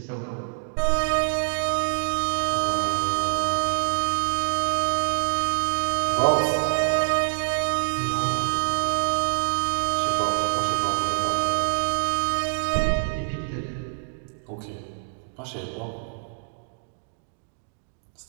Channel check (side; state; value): left; silent; digital silence